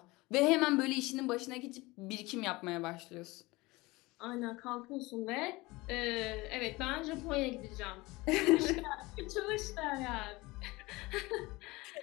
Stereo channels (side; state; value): right; quieter; 22.0 dB